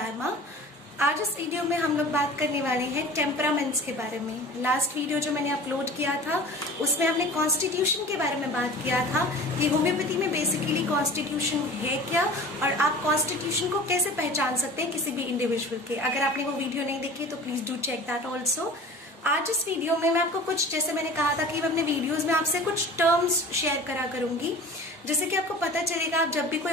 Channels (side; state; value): both; normal; correlation 0.40